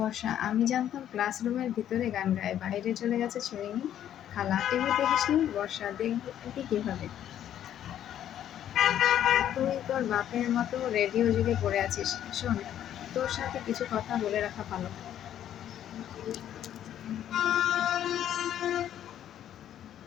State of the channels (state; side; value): quieter; right; 10.8 dB